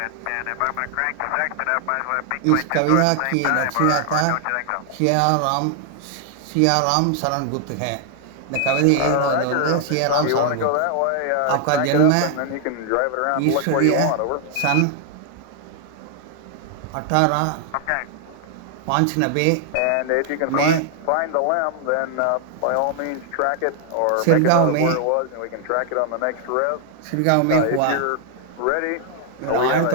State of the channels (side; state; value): both; different; correlation 0.00